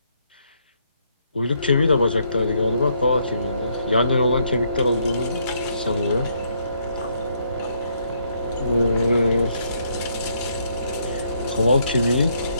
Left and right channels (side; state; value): both; inverted; correlation -0.72